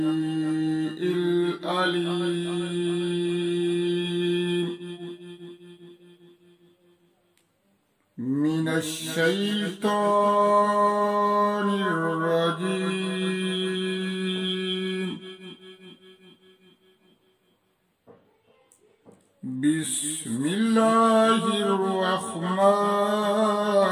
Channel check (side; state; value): both; identical; correlation 1.00